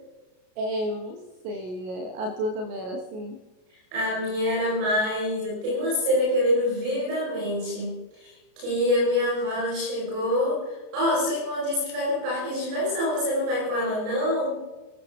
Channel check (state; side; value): late; left; 33 ms